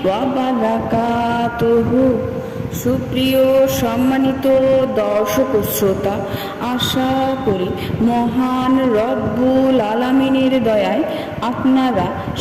ওয়া বারাকাতুহু। সুপ্রিয় সম্মানিত দর্শক শ্রোতা, আশা করি মহান রব্বুল আলামিনের দয়ায় আপনারা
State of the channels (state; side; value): identical; both; correlation 1.00